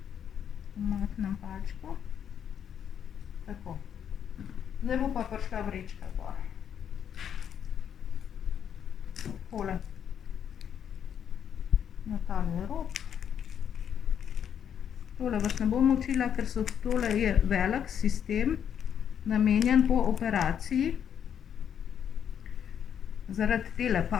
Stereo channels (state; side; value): quieter; right; 8.6 dB